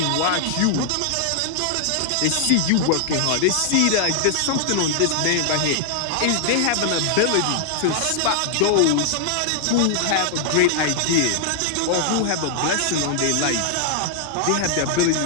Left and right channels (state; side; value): different; both; correlation 0.00